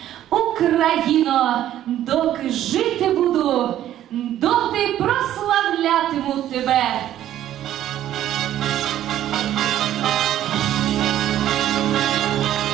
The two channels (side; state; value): left; quieter; 12.2 dB